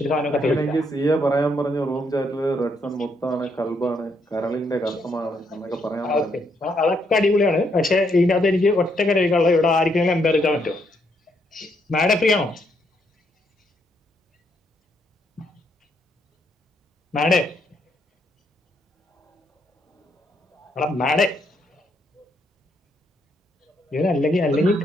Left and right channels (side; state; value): both; normal; correlation 0.74